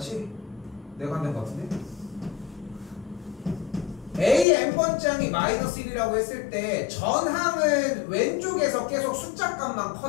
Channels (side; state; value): right; drops out; at 4.5 s